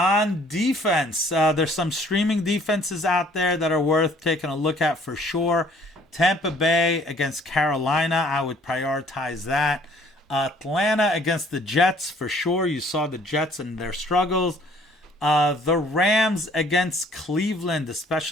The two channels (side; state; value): both; normal; correlation 0.57